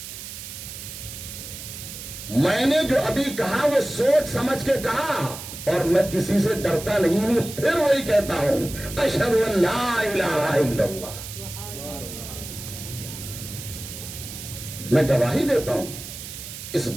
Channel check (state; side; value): noise; right; hiss, 11 dB below the sound